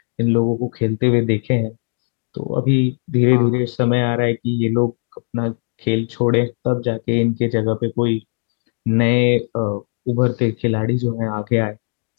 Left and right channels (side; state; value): right; silent; digital silence